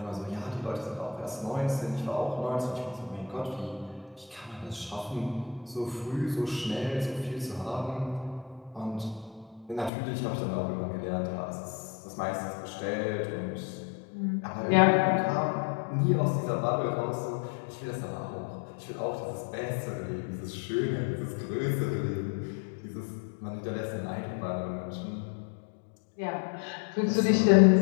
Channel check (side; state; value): right; drops out; at 9.9 s